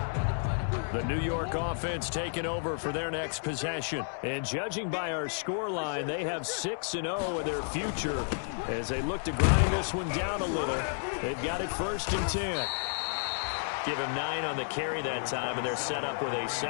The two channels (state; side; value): silent; right; digital silence